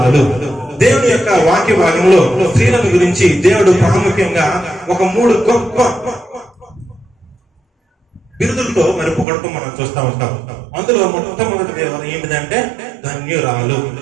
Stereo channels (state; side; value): drops out; left; at 9.2 s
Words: దేవుని యొక్క వాక్య భాగంలో స్త్రీలను గురించి దేవుడు ప్రాముఖ్యంగా ఒక 3 గొప్ప బిరుదులతో మరి పొగడటం మనం చూస్తూ ఉంటాం. అందులో మొట్టమొదటి ఏంటిదంటే ధన్యురాలు.